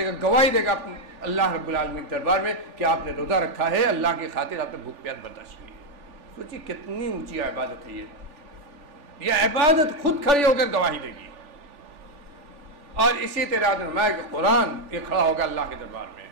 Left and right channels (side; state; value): left; late; 3.4 ms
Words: گا، گواہی دے گا اللہ رب العالمین کے دربار میں کہ آپ نے روزہ رکھا ہے، اللہ کی خاطر آپ نے بھوک پیاس برداشت کی ہے. سوچیے کتنی اونچی عبادت ہے یہ عبادت خود کھڑی ہو کر گواہی دے گی. اور اسی طرح فرمایا کہ قرآن یہ کھڑا ہوگا اللہ کے دربار میں.